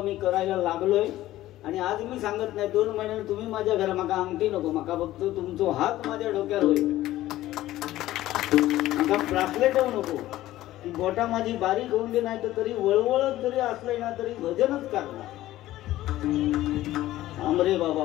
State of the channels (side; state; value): right; quieter; 15.2 dB